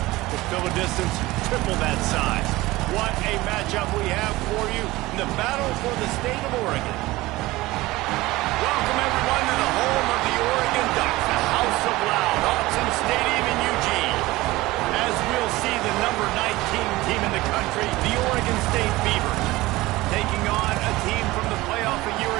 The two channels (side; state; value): left; quieter; 19.2 dB